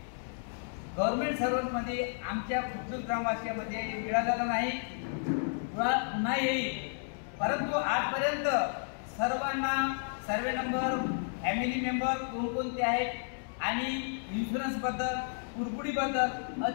गव्हर्नमेंट सर्व्हंटमध्ये आमच्या खुर्दूर ग्रामवासियामध्ये मिळालेला नाही, पुन्हा येईल. परंतु आजपर्यंत सर्वांना सर्वे नंबर, फॅमिली मेंबर कोणकोणते आहेत आणि इन्शुरन्सबद्दल, कुरकुडीबद्दल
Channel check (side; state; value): right; silent; digital silence